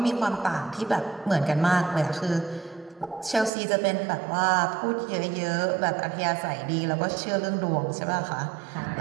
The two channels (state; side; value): drops out; left; at 3.5 s